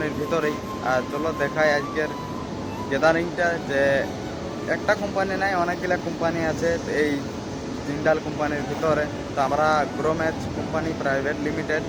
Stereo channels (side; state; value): both; identical; correlation 1.00